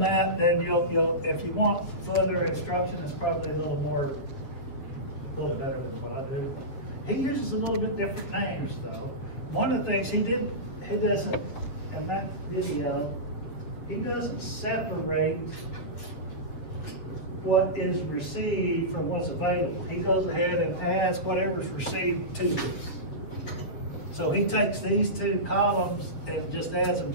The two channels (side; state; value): right; late; 7.6 ms